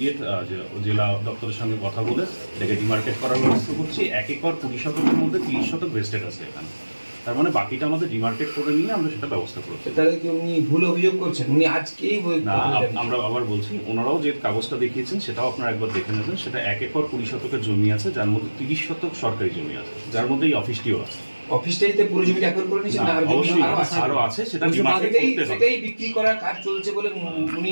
জেলা দপ্তরের সঙ্গে কথা বলে এটাকে ডিমার্কেট করার ব্যবস্থা করছি। 1 একর 20 শতকের মধ্যে 30 শতক ভেস্টেড আছে এখানে, তার মানে বাকিটা আমাদের ডিমার্কেট করে নিয়ে আমরা সেটা ব্যবস্থা করছি। তাহলে কি উনি ভুল অভিযোগ করছেন? উনি আজকেই না, আমরা আবার বলছি, ওনারাও যে কাগজটা দেখিয়েছেন সেটাও আপনারা একবার দেখে নেবেন। সেটা 1 একর 20 শতকের জমি আছে, যার মধ্যে 30 শতক সরকারি জমি আছে, যার মধ্যে এই অফিসটিও আছে। অফিসটাইতে পুরো জমিটা একর করে নিয়েছেন না? অবশ্যই আরো আছে, সেটা ডিমার্কেট করতে হবে। সেটাই বিক্রি করার কাজ চলছে বলে উনি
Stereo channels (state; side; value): inverted; both; correlation -1.00